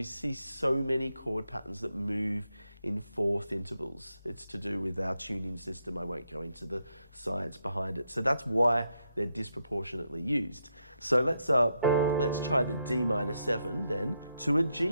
see so many chord patterns that move in 4th intervals. It's to do with our tuning system. I won't go into the science behind it. So that's why they're disproportionately used. So let's try the D minor 7 then to a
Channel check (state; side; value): inverted; both; correlation -0.81